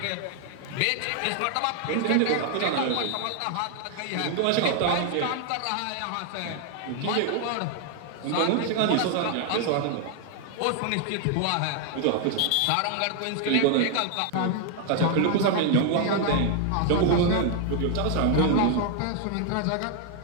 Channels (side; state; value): both; different; correlation 0.00